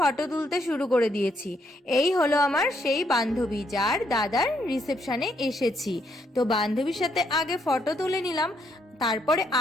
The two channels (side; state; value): both; normal; correlation 0.74